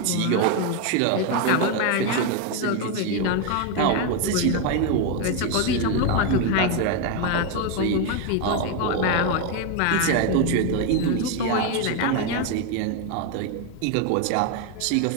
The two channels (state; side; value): different; both; correlation 0.02